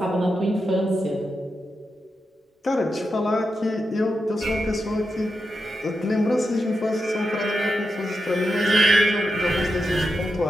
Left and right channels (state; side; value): normal; both; correlation 0.87